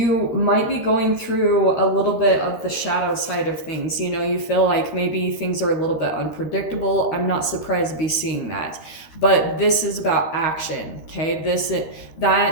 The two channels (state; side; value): late; right; 13 ms